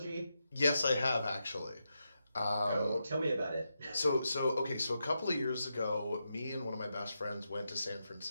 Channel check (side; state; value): both; inverted; correlation -0.86